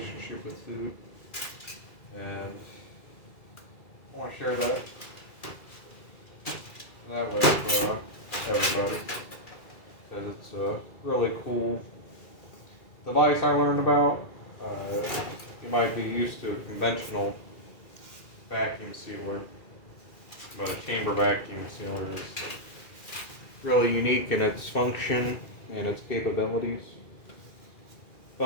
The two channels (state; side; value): late; right; 2.4 ms